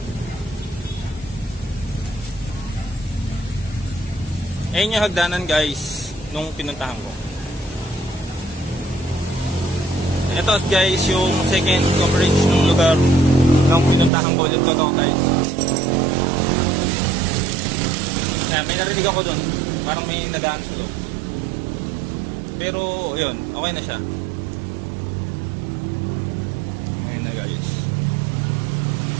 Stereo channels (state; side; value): drops out; left; at 14.1 s